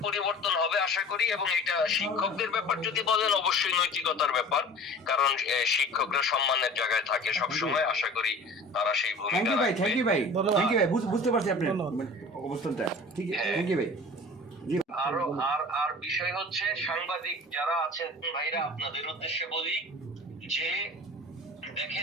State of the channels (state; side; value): normal; both; correlation 0.42